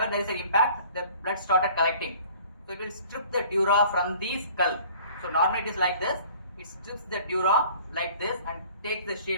there is an impact, the blood started collecting. So it will strip the dura from the skull. So normally it is like this. It strips the dura like this and takes the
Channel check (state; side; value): inverted; both; correlation -0.51